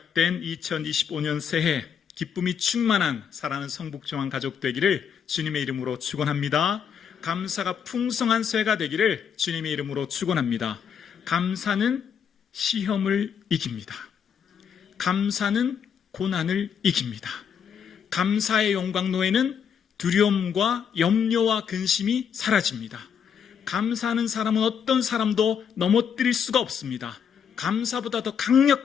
2025년 새해 기쁨이 충만한 사랑하는 성북중앙 가족 되기를 주님의 이름으로 축원합니다. 감사가 풍성한 새해가 되기를 주님의 이름으로 축원합니다. 감사는 시험을 이깁니다. 감사는 고난을 이깁니다. 감사의 영광로에는 두려움과 염려와 근심이 사라집니다. 감사하는 사람은 어떤 사람도 넘어뜨릴 수가 없습니다. 감사보다 더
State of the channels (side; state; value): right; quieter; 7.6 dB